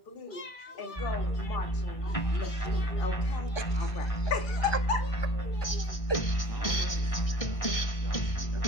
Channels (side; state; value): right; late; 1.6 ms